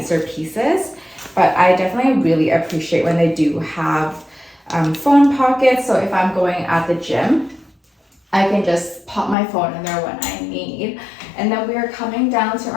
pieces. But I definitely really appreciate when they do have phone pockets. So if I'm going at the gym, I can just pop my phone in there when I need. And then we are coming down to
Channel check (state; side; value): drops out; right; at 9.3 s